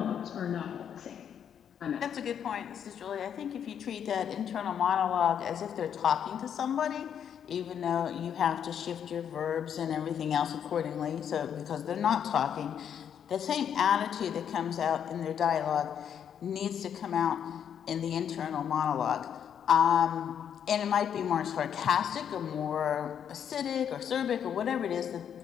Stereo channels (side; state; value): right; quieter; 8.6 dB